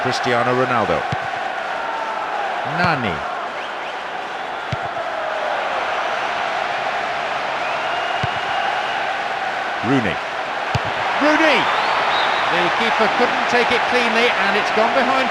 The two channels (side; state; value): both; identical; correlation 1.00